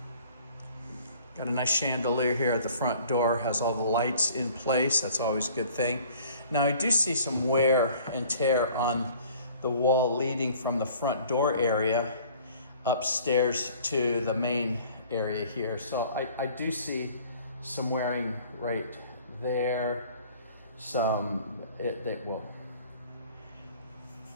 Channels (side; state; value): both; inverted; correlation -0.51